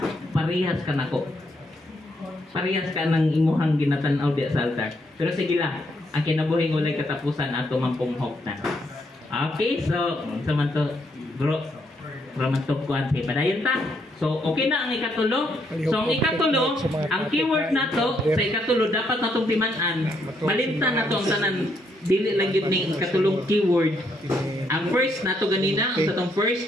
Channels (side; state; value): both; normal; correlation 0.74